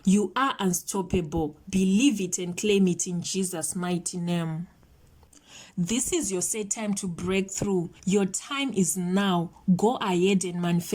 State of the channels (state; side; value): identical; both; correlation 1.00